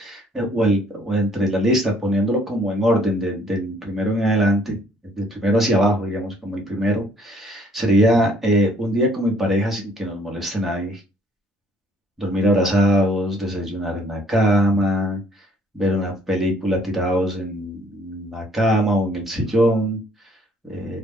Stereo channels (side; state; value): both; normal; correlation 0.62